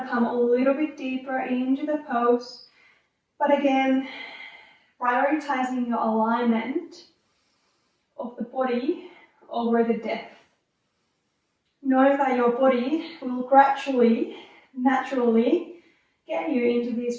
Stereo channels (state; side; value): identical; both; correlation 1.00